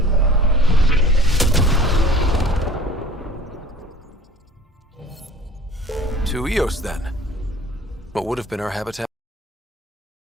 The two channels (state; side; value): normal; both; correlation 0.46